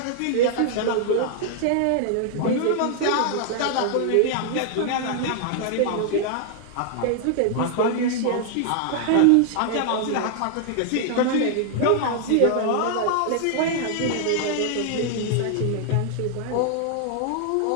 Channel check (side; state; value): both; different; correlation -0.01